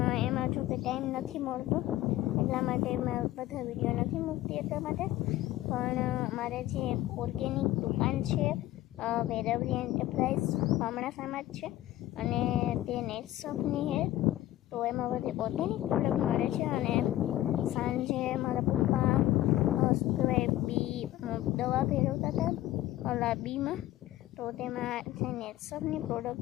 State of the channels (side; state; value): right; quieter; 14.9 dB